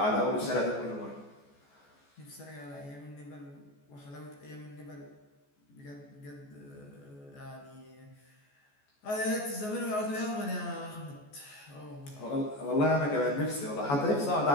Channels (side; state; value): right; late; 14 ms